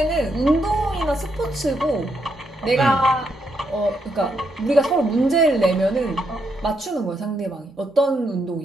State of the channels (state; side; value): normal; both; correlation 0.79